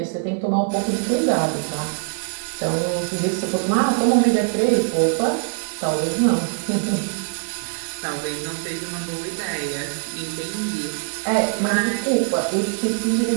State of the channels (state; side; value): silent; left; digital silence